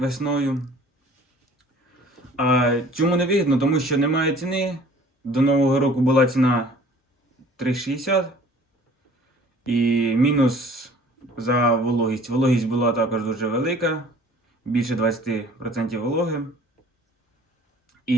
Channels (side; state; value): both; normal; correlation 0.51